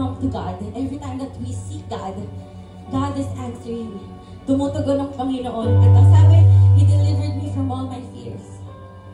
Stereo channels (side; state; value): both; identical; correlation 1.00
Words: to God, and every time that we seek God, God is answering. Tumutugon ng Panginoon. At ang sabi, He delivered me from all my fears.